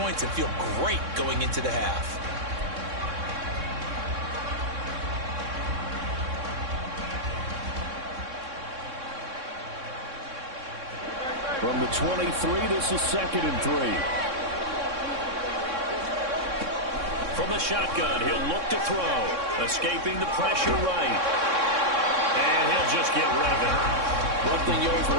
and feel great going into the half. From the 23, this is 2nd and 3. From the shotgun, he'll look to throw. Escaping the pressure right. And he'll just get rid of it. One thing you always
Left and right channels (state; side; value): late; left; 3.6 ms